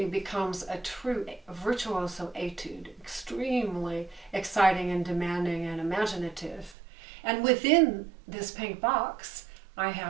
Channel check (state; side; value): drops out; left; at 6.8 s